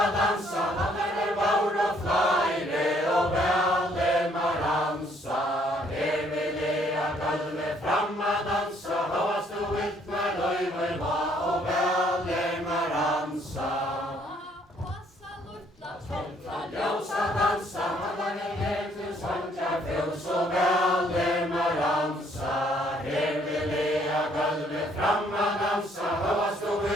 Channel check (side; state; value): both; normal; correlation 0.65